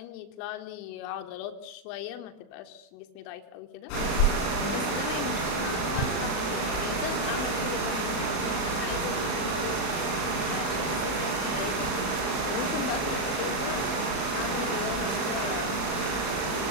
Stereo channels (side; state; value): right; late; 39 ms